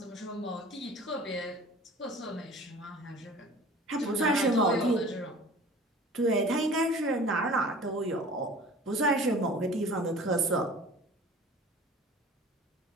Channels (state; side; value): normal; both; correlation 0.44